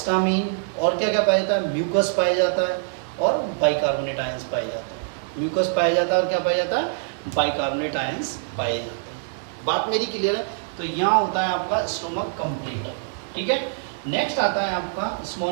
और क्या क्या पाया जाता है? म्यूकस पाया जाता है और बाइकार्बोनेट आयंस पाए जाते हैं। म्यूकस पाया जाता है और क्या पाया जाता है? बाइकार्बोनेट आयंस पाए जाते हैं। बात मेरी क्लियर है? तो यहाँ होता है आपका स्टोमक कंप्लीट। ठीक है, नेक्स्ट आता है आपका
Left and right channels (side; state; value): left; silent; digital silence